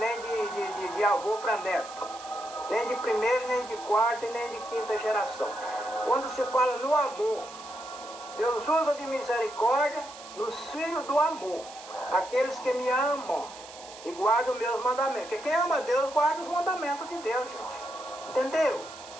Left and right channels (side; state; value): right; noise; hiss, 17 dB below the sound